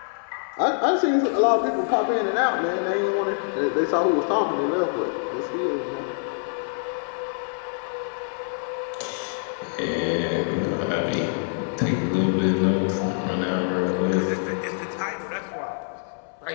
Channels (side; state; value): right; silent; 62 dB below the other